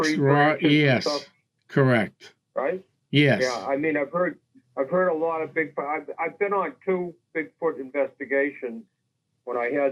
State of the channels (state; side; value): identical; both; correlation 1.00